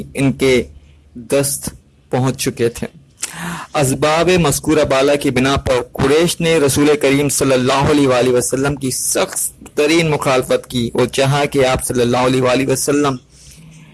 ان کے دست پہنچ چکے تھے۔ اسباب مذکورہ بالا کی بنا پر قریش نے رسول کریم صلی اللہ علیہ وآلہ وسلم کی سخت ترین مخالفت کی اور چاہا کہ آپ صلی اللہ علیہ وآلہ وسلم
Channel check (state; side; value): identical; both; correlation 1.00